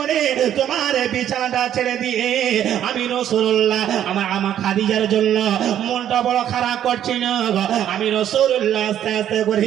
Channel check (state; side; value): quieter; left; 10.6 dB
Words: তোমার বিছানাটা ছেড়ে দিয়ে আমি রাসূলুল্লাহ আমার খাদিজার জন্য মনটা বড় খারাপ করছিল। আমি রাসূলুল্লাহ আস্তে আস্তে করে